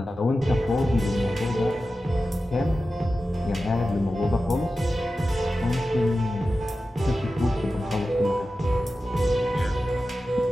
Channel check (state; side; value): normal; both; correlation 0.93